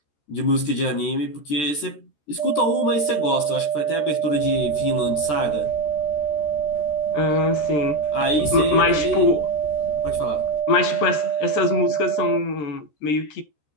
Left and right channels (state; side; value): late; right; 14 ms